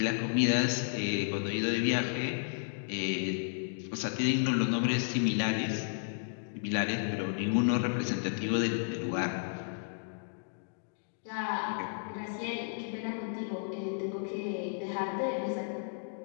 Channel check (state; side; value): silent; right; digital silence